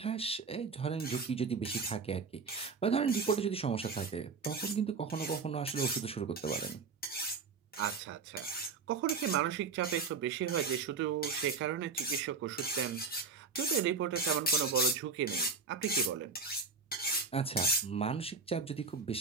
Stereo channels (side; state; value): left; quieter; 4.8 dB